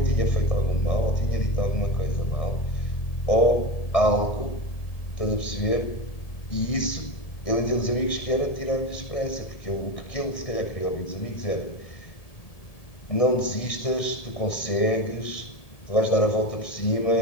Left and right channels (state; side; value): late; right; 1.7 ms